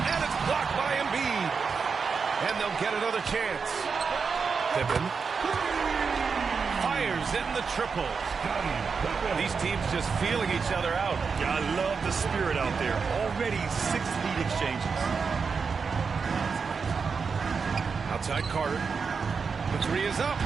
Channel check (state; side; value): quieter; left; 5.4 dB